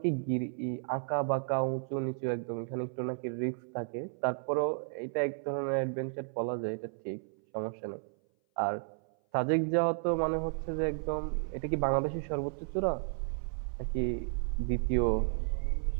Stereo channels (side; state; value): left; silent; 56 dB below the other